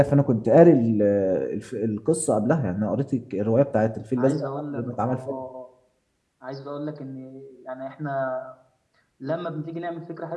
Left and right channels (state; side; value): identical; both; correlation 1.00